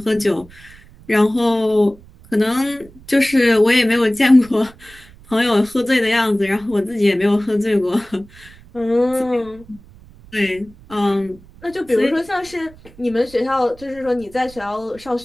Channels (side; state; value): right; noise; rumble, 23 dB below the sound